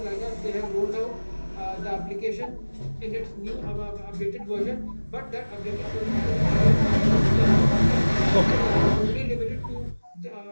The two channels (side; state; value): both; inverted; correlation -1.00